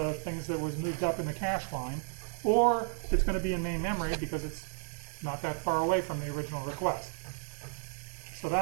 things that was moved up in the cache line, or it's going to be in main memory because it's not that far away from the original request. So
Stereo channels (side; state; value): left; silent; digital silence